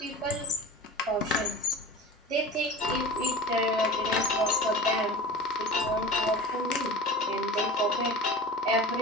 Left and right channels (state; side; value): normal; both; correlation 0.35